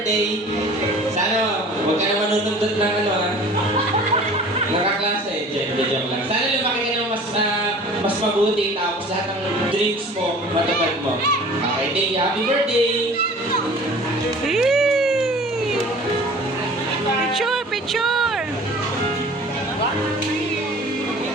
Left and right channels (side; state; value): both; normal; correlation 0.45